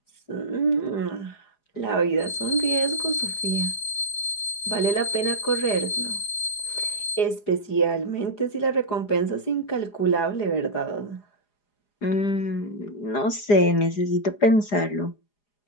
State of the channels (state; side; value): late; right; 4.9 ms